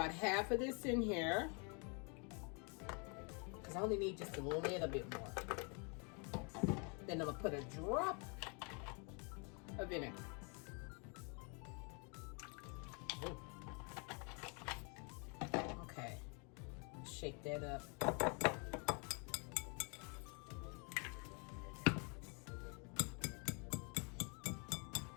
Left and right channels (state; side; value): quieter; right; 35.1 dB